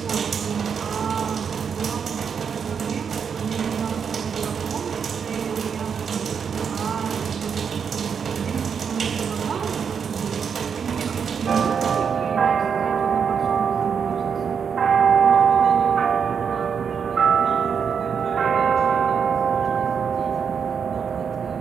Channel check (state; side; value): quieter; left; 6.8 dB